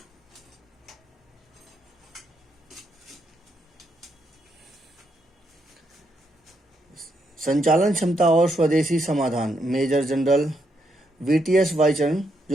संचालन क्षमता और स्वदेशी समाधान। मेजर जनरल वीटीएस वाइचरण,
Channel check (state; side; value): normal; both; correlation 0.78